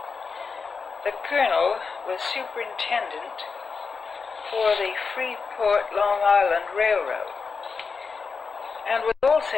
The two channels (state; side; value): quieter; right; 5.0 dB